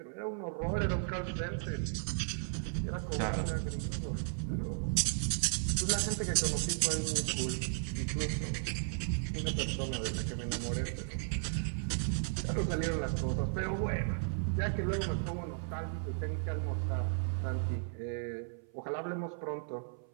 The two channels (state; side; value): silent; left; 54 dB below the other